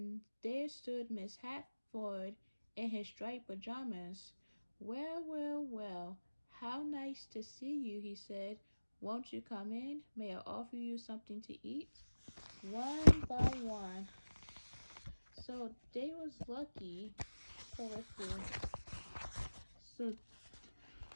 there stood Miss Hatford in his striped pajamas. Well, well, well, how nice to see you, he said. Won't you come in? May I offer you something to eat? One by one. So they was lucky. So let's see.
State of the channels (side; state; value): both; inverted; correlation -1.00